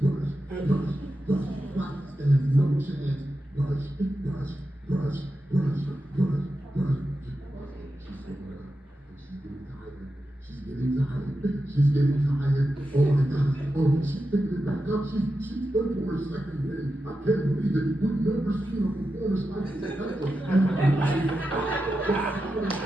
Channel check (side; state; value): both; normal; correlation 0.90